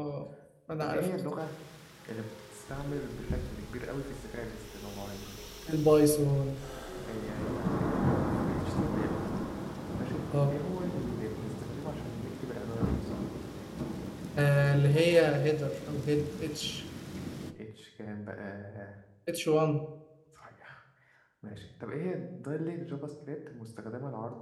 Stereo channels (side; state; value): both; identical; correlation 1.00